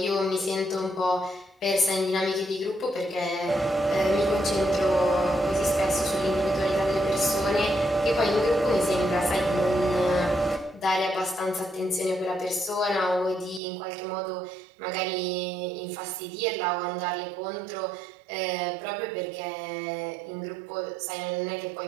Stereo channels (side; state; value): left; drops out; at 13.6 s